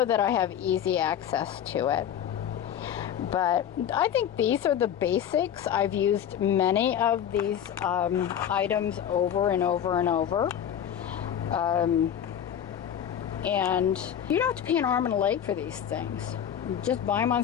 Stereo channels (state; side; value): quieter; right; 9.5 dB